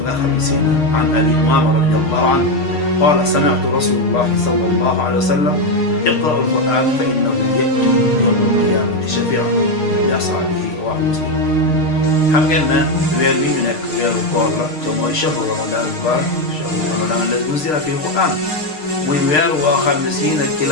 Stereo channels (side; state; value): right; late; 6.6 ms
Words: nga xam ne si an Abi Umaama radiyallahu anhu قال سمعت رسول الله صلى الله عليه وسلم اقرأوا القرآن فإنه يأتي يوم القيامة شفيعا لأصحابه رواه مسلم. xam ngeen ne weer wi ñu nekk weeru koor la te mooy shahru ramadan mubarak shahru ramadan alladi unzila fihi alquran muy weer woo xam ne si nag ci